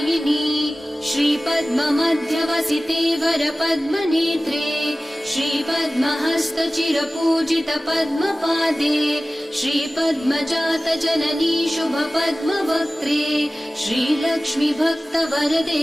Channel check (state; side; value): normal; both; correlation 0.97